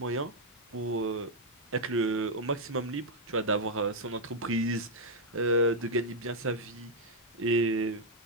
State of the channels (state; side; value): normal; both; correlation -0.01